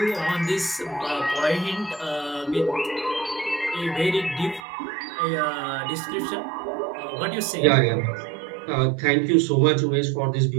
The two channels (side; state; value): left; drops out; at 4.7 s